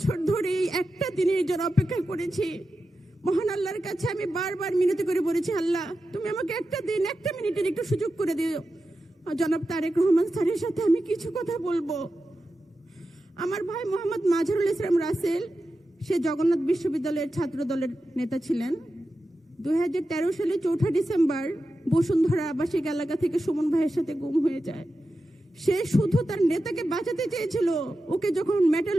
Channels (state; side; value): normal; both; correlation 0.91